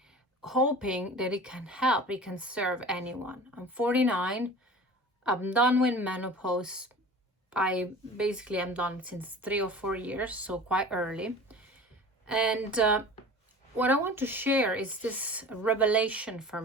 hoping that it can help, it can serve anyone. I'm 49. I'm done with menopause. I basically am done since 3 or 4 years, so quite early. And what I want to share is this revelation for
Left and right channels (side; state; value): both; normal; correlation 0.39